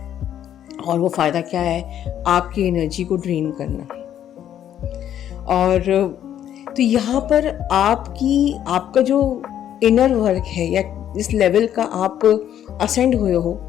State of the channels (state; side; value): quieter; right; 10.5 dB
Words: और वो फ़ायदा क्या है? आपकी एनर्जी को ड्रेन करना। और तो यहाँ पर आपका जो इनर वर्क है या इस लेवल का आप असेंड हुए हो